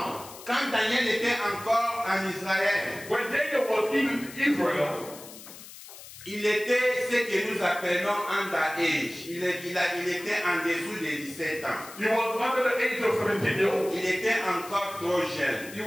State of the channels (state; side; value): noise; left; hiss, 16 dB below the sound